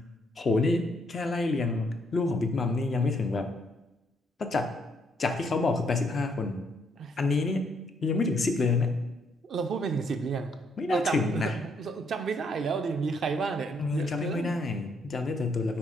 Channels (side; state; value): both; normal; correlation 0.72